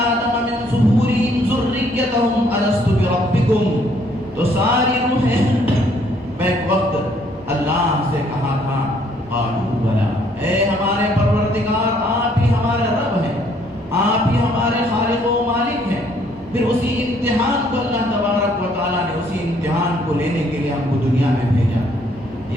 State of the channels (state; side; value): normal; both; correlation 0.65